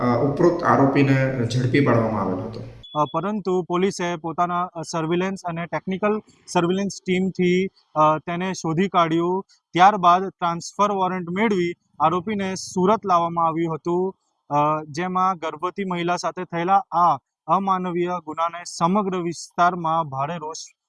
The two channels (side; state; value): both; identical; correlation 1.00